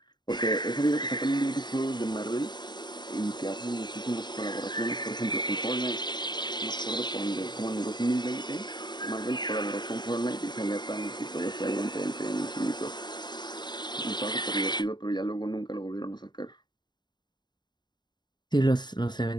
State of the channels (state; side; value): late; right; 0.21 ms